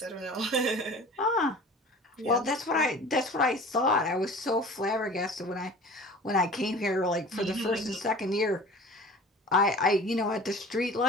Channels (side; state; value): both; normal; correlation 0.42